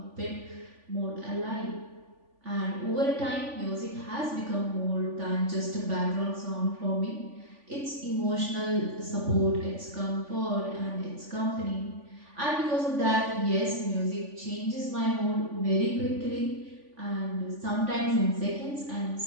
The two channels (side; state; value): left; late; 3.5 ms